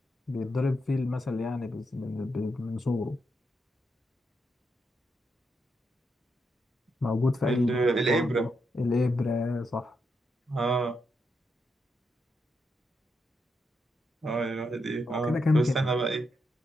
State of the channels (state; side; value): normal; both; correlation 0.82